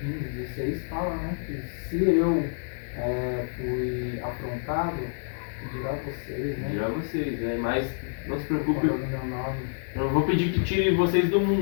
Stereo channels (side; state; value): right; silent; digital silence